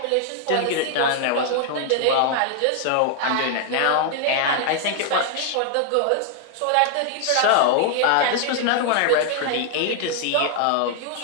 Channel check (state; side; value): different; both; correlation 0.00